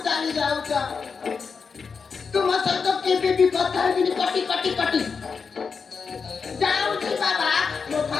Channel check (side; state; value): right; quieter; 5.4 dB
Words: ଚାଲି ଯାଉଛ ତୁମ ସହିତ କେବେ ବି କଥା ହେବିନି କଟି ଯାଉଛି ବାବା ମୋ